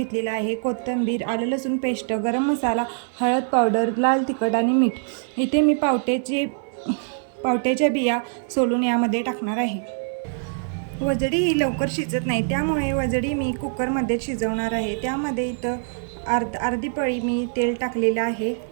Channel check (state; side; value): silent; left; digital silence